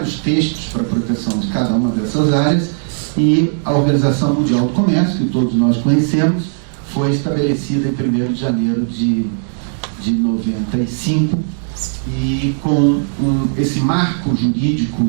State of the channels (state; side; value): silent; left; 68 dB below the other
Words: textos para a proteção de cada uma dessas áreas, e a Organização Mundial do Comércio, que todos nós conhecemos, foi estabelecida em 1º de janeiro de 95, e com esse marco jurídico